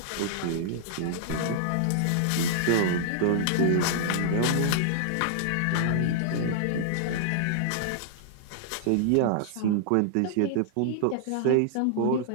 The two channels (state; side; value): different; both; correlation -0.01